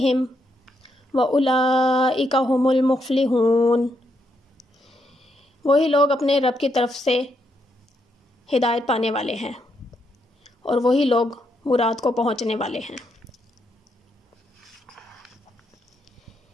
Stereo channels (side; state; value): both; normal; correlation 0.78